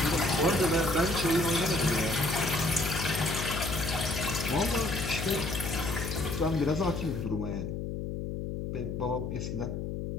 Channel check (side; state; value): left; noise; hum, 4 dB below the sound